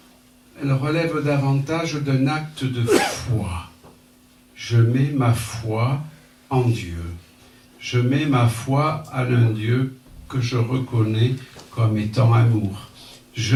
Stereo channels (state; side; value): identical; both; correlation 1.00